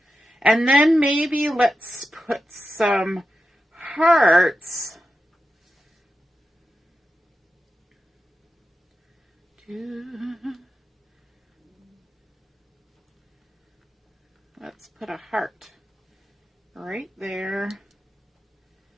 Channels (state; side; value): normal; both; correlation 0.90